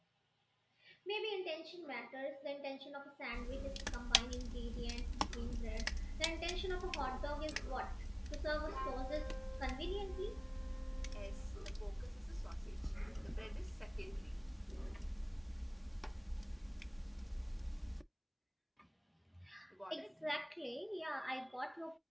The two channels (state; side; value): identical; both; correlation 1.00